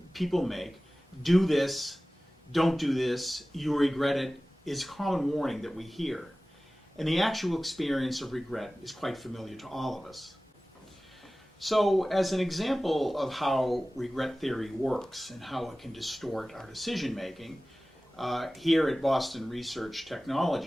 people make. Do this, don't do this, you regret it, is a common warning that we hear. And the actual experience of regret is quite familiar to all of us. So as an example of how regret theory works and how it can distort our decision making, here at Boston Research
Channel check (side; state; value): both; normal; correlation 0.97